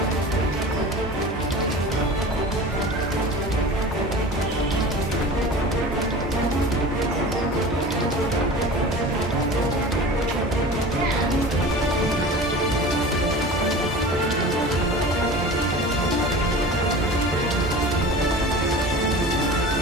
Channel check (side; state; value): both; normal; correlation 0.36